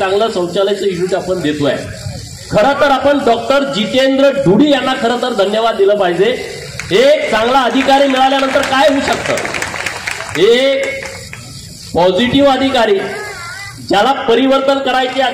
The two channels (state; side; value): identical; both; correlation 1.00